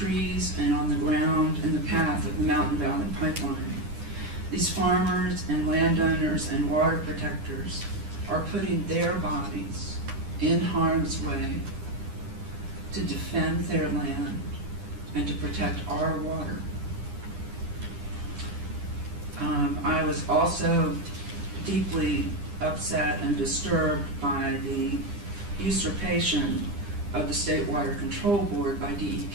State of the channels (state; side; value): late; left; 9.9 ms